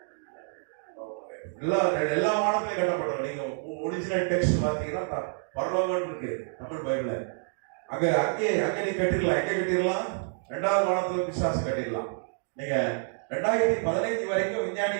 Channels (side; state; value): left; silent; digital silence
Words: எல்லா வானத்திலையும் கட்டப்பட்டிருக்கோம். நீங்க ஒரிஜினல் டெக்ஸ்ட் பாத்தீங்கன்னா பரலோகம் இருக்கு தமிழ் பைபிள்ல. அங்கே நீ கட்டிடலாம். எங்க கட்டிடலாம்? இரண்டாவது வானத்துல பிசாசு கட்டிடலாம். நீங்க 2015 வரைக்கும்